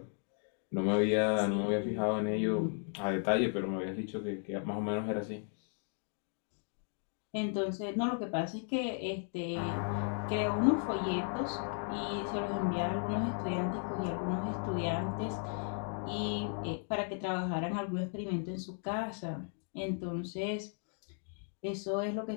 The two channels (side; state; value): right; silent; 54 dB below the other